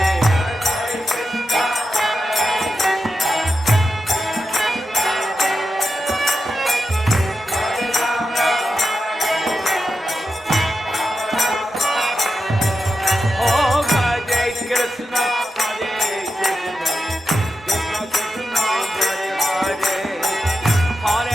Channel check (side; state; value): both; normal; correlation 0.90